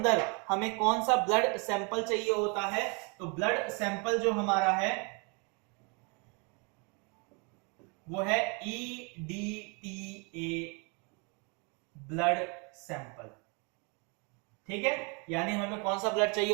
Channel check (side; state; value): left; quieter; 33.0 dB